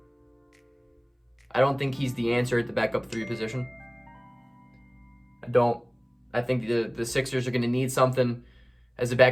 I don't think he's the answer at the backup 3 position. I don't. I think the Sixers are going to need something as a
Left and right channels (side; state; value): both; identical; correlation 1.00